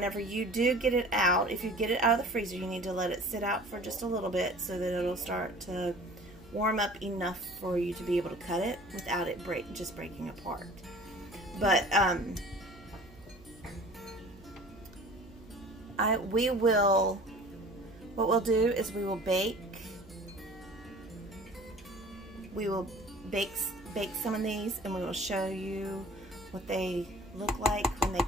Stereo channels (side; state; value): right; noise; hum, 22 dB below the sound